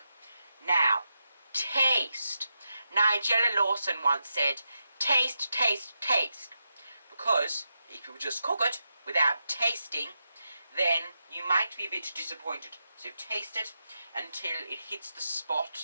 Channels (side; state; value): both; inverted; correlation -0.86